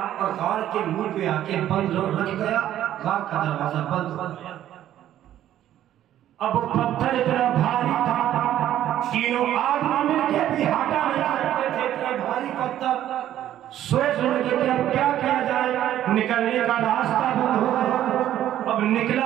اور غار کے منہ پہ آ کے بند رکھ گیا. غار کا دروازہ بند ہو گیا. اب وہ پتھر اتنا بھاری تھا، 3 آدمی مل کے بھی ہٹا نہیں سکتے تھے. اتنا بھاری پتھر سوچ رہے تھے کہ اب کیا کیا جائے. نکلنے کا راستہ بند ہو گیا. اب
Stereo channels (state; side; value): quieter; left; 12.0 dB